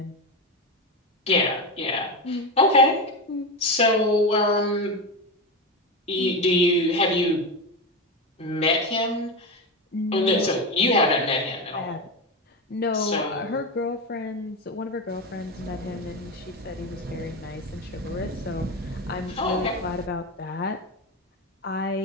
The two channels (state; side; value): normal; both; correlation 0.17